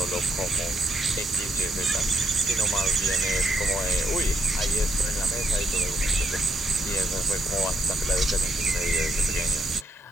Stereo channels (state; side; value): normal; both; correlation 0.78